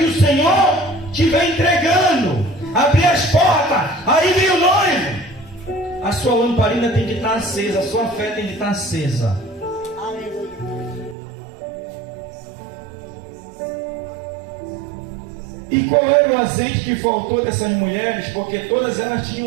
o Senhor estiver entregando, abrir as portas, aí vem o noivo. A sua lamparina tem que estar acesa, a sua fé tem que estar acesa. Aleluia. E qual era o azeite que faltou dessas mulheres? Porque todas elas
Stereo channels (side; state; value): left; drops out; at 11.2 s